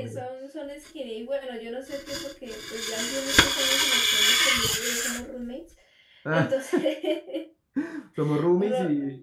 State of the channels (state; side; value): identical; both; correlation 1.00